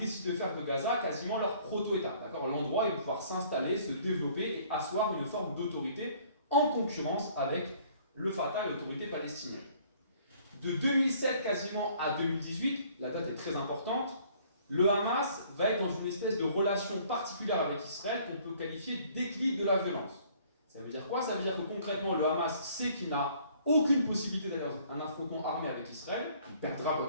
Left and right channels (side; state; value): both; inverted; correlation -0.58